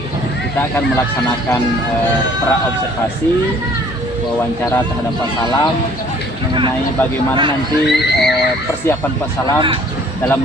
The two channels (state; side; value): normal; both; correlation 0.56